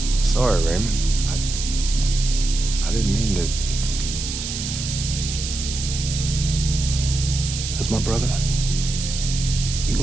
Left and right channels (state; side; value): noise; right; hiss, 6 dB below the sound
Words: Sorry, Raymond. I didn't mean to... As my brother, you